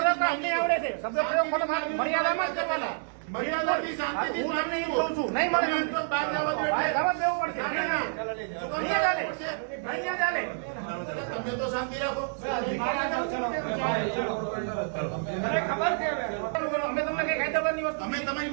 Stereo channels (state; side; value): silent; left; digital silence